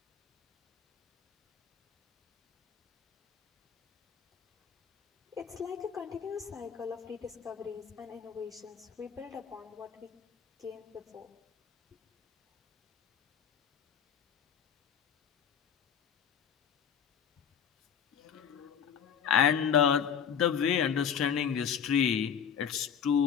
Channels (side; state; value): right; quieter; 7.8 dB